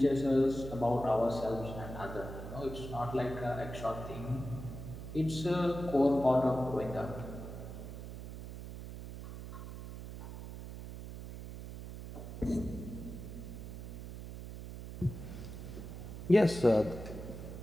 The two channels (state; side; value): noise; right; hum, 10 dB below the sound